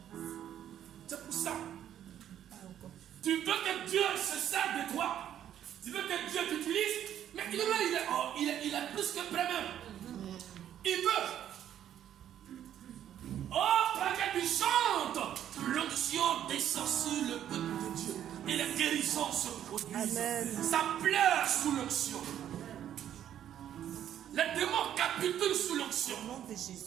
C'est pour ça. Tu veux que Dieu se serve de toi. Tu veux que Dieu t'utilise. Mais il est plus que prêt même. Il veut. Oh, quand tu chantes, l'onction descend sur le peuple de Dieu. Et les guérisons se produisent. Amen. Ça pleure sous l'onction. Les démons capitulent sous l'onction. Au nom de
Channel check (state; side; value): quieter; left; 10.6 dB